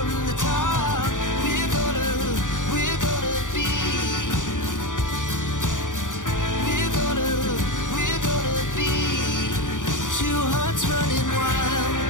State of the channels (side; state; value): right; late; 0.87 ms